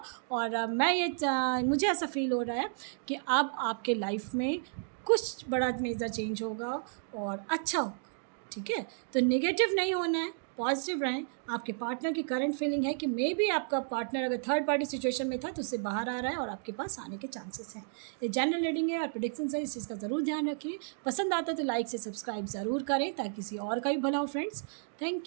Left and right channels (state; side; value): silent; left; digital silence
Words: और मुझे ऐसा फील हो रहा है कि अब आपके लाइफ में कुछ बड़ा मेजर चेंज होगा और अच्छा होगा। ठीक है, तो नेगेटिव नहीं होना है, पॉजिटिव रहें। आपके पार्टनर की करंट फीलिंग है कि मे बी आपका पार्टनर अगर थर्ड पार्टी सिचुएशन में था तो उससे बाहर आ रहा है और आपके पास आने के चांसेस हैं। ये जनरल रीडिंग है और प्रेडिक्शन है, इस चीज़ का ज़रूर ध्यान रखिए। पसंद आता तो लाइक से सब्सक्राइब ज़रूर करें ताकि किसी और का भी भला हो फ्रेंड्स।